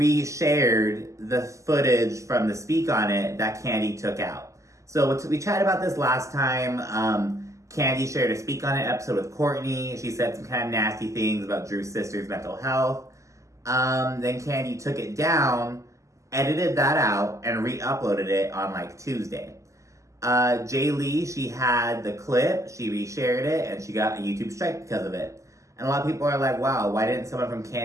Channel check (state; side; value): late; left; 0.15 ms